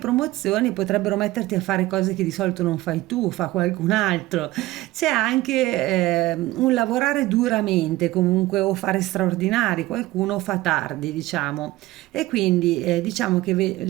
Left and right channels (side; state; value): left; quieter; 17.8 dB